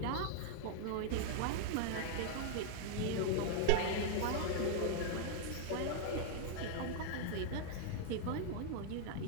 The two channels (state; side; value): different; both; correlation 0.00